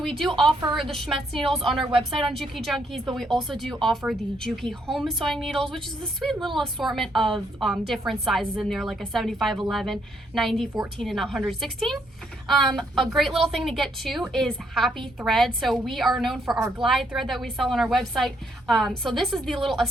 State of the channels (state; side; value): normal; both; correlation 0.73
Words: we do offer the Schmetz needles on our website on JUKI Junkies, but we also do offer the JUKI home sewing needles, which is a sweet little assortment of different sizes in there, like a 75, 11, 90, 14, and 116. A great little thing to get too is happy thread. So we are known for our glide thread that we sell on our website. So this is the little